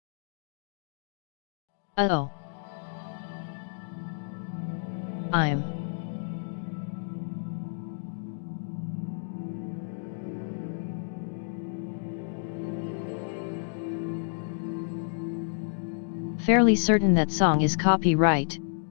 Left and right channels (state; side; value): silent; right; digital silence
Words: as a dark... Uh-oh. I'm... fairly certain that song is copyright.